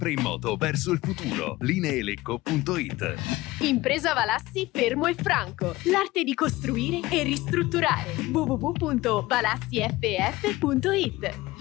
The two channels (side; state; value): right; quieter; 19.0 dB